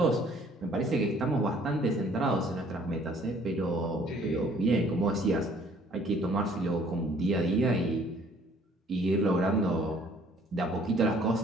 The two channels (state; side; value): normal; both; correlation 0.58